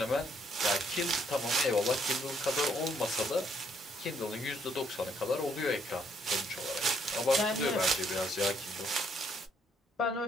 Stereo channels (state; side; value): normal; both; correlation 0.69